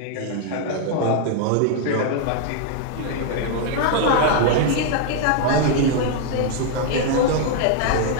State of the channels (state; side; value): different; both; correlation 0.00